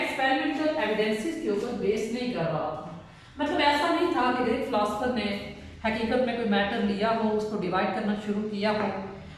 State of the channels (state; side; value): identical; both; correlation 1.00